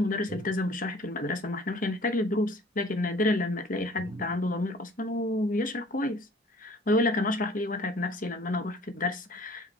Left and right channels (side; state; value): both; normal; correlation 0.51